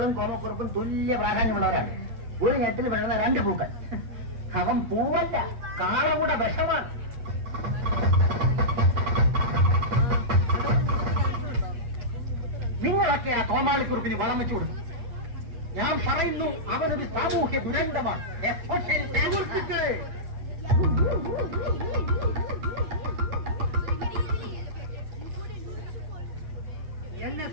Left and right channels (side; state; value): left; late; 8.4 ms